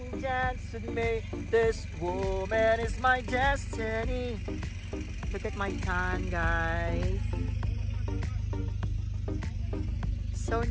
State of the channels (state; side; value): identical; both; correlation 1.00